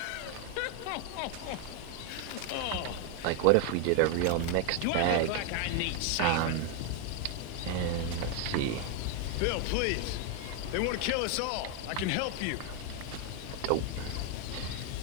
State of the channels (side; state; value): both; different; correlation 0.01